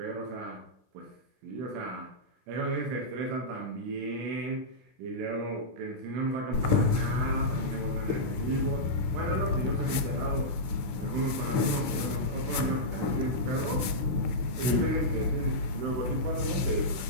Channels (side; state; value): left; late; 16 ms